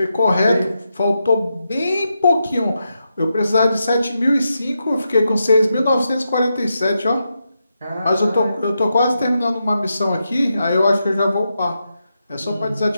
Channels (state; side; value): inverted; both; correlation -0.86